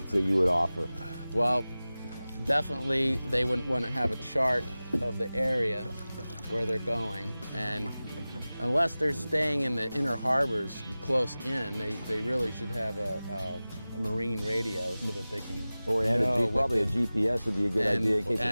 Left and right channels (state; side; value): inverted; both; correlation -0.97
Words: that you would offer? Well, definitely they wouldn't want to have a chart of the area where they're going, and unless they're staying in the inner harbors close in, they really should have a marine radio so that they can Probably a GPS would be a good idea in case